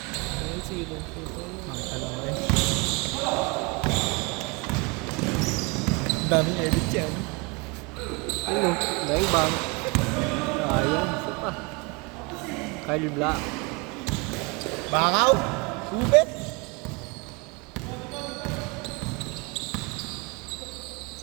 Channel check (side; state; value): left; quieter; 27.9 dB